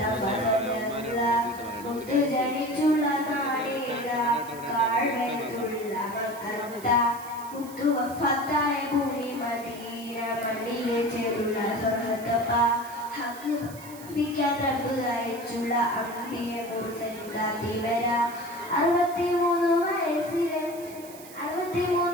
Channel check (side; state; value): right; noise; hiss, 18 dB below the sound